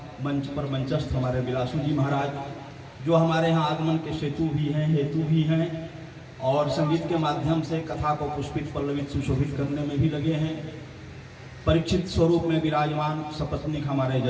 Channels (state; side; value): identical; both; correlation 1.00